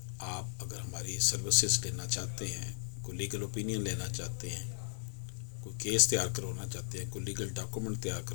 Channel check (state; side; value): silent; right; digital silence